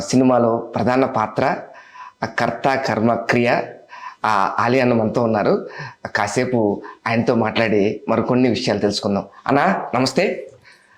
సినిమాలో ప్రధాన పాత్ర కర్త కర్మ క్రియ ఆలి అన్న మనతో ఉన్నారు. కాసేపు ఆయనతో మాట్లాడి మరికొన్ని విషయాలు తెలుసుకుందాం. అన్న నమస్తే.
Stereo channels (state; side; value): identical; both; correlation 1.00